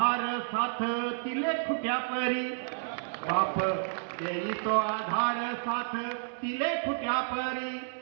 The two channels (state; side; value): silent; left; 57 dB below the other